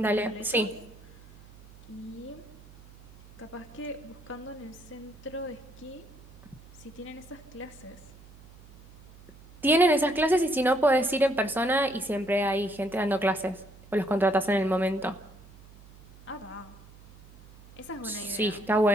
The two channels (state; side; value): noise; right; hum, 22 dB below the sound